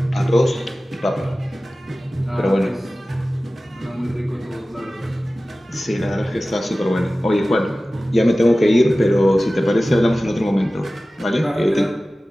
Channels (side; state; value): both; normal; correlation 0.96